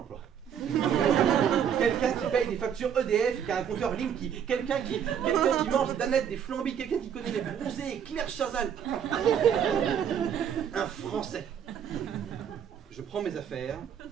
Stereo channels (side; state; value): left; quieter; 8.4 dB